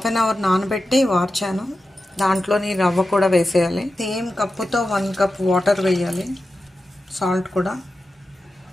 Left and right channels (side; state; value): both; normal; correlation 0.92